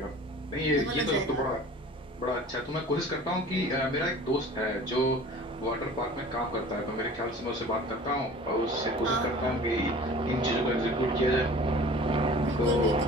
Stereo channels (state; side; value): normal; both; correlation 0.44